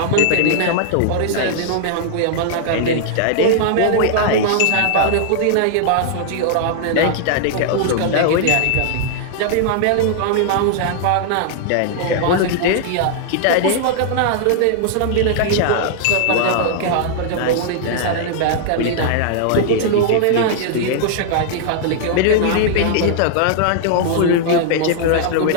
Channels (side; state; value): both; different; correlation -0.01